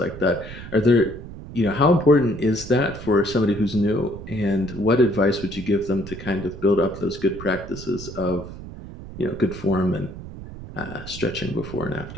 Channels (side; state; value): right; noise; rumble, 12 dB below the sound